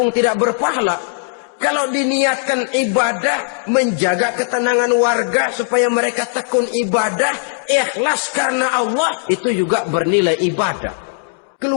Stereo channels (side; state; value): right; silent; digital silence